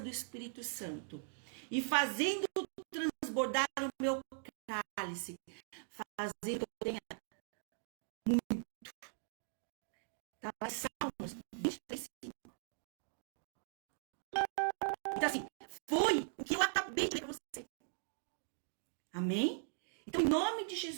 Espírito Santo. E fazendo transbordar o meu cálice, fazendo que eu tenha muito. Tá lá em Salmos 23:5. Então assim, foi o que eu acabei de ler para você. Amém? Então, em nome de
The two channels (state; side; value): silent; left; digital silence